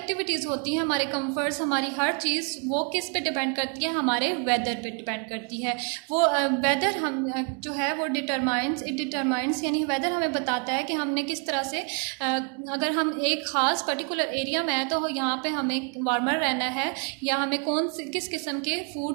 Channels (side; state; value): left; quieter; 39.4 dB